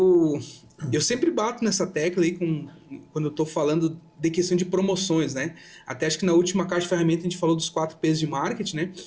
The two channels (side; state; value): both; identical; correlation 1.00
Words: sempre bato nessa tecla aí quando eu estou falando de questão de promoções, né? Até acho que na última caixa de ferramenta a gente falou dos 4 P's de marketing, né?